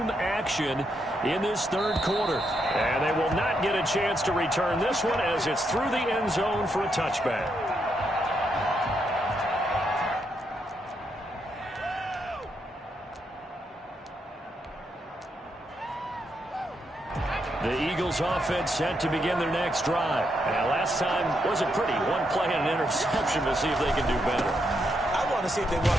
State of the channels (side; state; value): both; normal; correlation 0.80